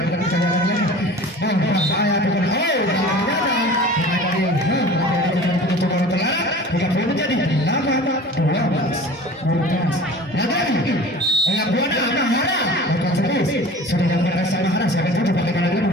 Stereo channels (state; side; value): normal; both; correlation 0.41